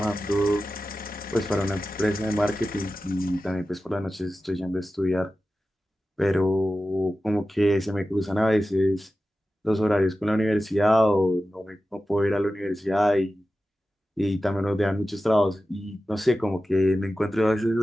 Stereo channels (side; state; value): both; normal; correlation 0.94